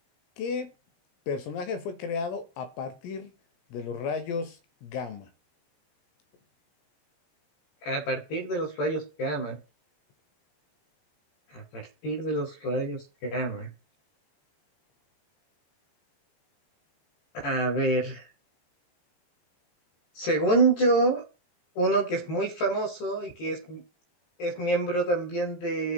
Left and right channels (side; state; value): right; late; 17 ms